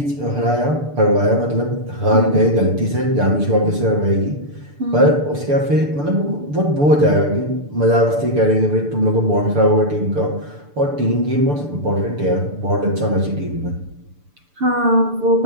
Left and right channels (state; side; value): late; left; 6.9 ms